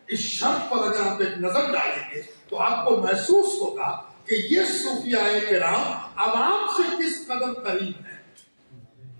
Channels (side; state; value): both; inverted; correlation -1.00